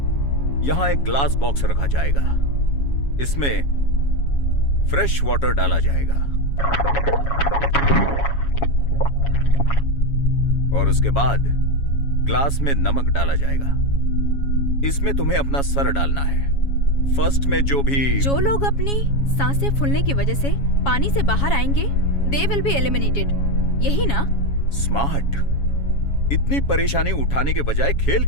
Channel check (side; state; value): right; late; 7.2 ms